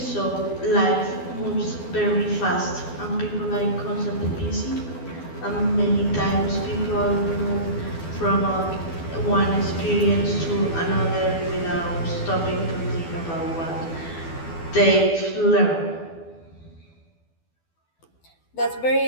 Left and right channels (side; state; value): right; late; 12 ms